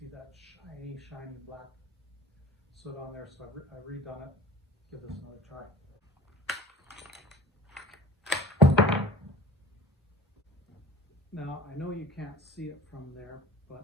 that shiny black soot on there, so I've redone it. Give this another try. Now, I know you can't see it from there,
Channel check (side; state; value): both; normal; correlation 0.44